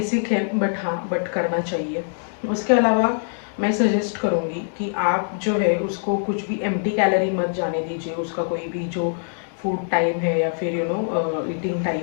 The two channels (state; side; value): silent; right; digital silence